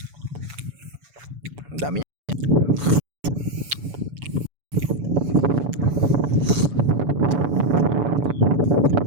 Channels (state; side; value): late; left; 7.0 ms